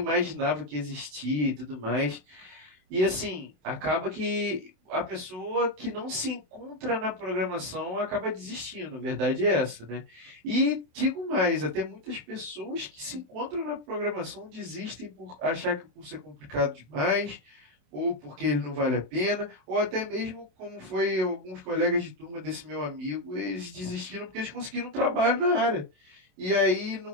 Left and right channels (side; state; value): left; late; 27 ms